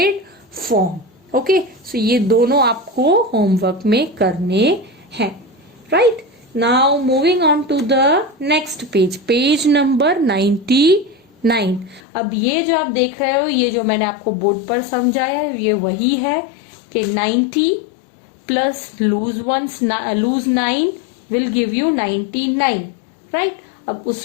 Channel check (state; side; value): drops out; right; at 12.0 s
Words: form. Okay, so ये दोनों आपको homework में करने हैं. Right? Now moving on to the next page, page number 99. अब ये जो आप देख रहे हो, ये जो मैंने आपको बोर्ड पर समझाया है, ये वही है कि 90 plus lose 9 will give you 99. Right? अब